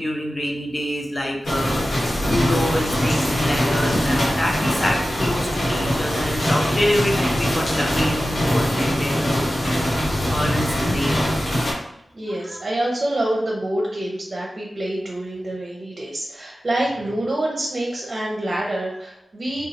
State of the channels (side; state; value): both; normal; correlation 0.94